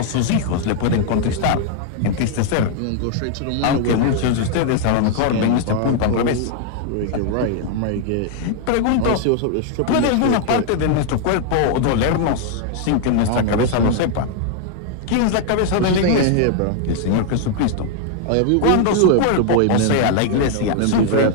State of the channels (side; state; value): both; different; correlation 0.00